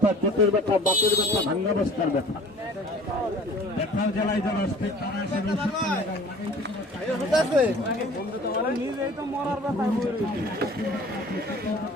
পেটের ব্যথা, বাতের ব্যথা, ভাঙ্গা বস্তার ব্যথা, ব্যথার জ্বালায় যারা আসছে তারা এসে ঔষধটা লাগান,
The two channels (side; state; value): both; normal; correlation 0.47